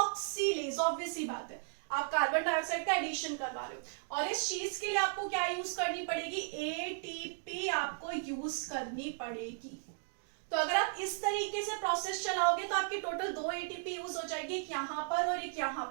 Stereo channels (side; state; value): left; silent; digital silence